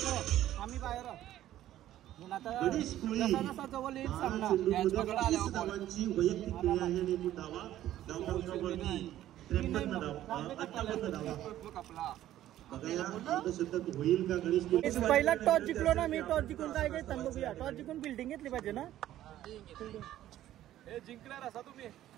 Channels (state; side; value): quieter; left; 13.1 dB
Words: आम्ही बाहेर आहोत. आता जसा जसा जवळ येईल सामना पहिला टॉस जिंकलो ना मी. टॉस जिंकून काय काय बघूया. टॉस जिंकून बिल्डिंग घेतली पाहिजे ना. जिंकणार असा तुम्ही.